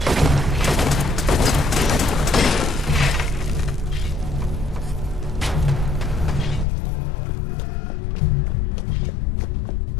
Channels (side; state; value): right; drops out; at 6.7 s